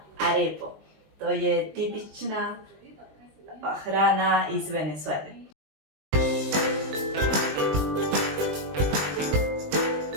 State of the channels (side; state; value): left; late; 20 ms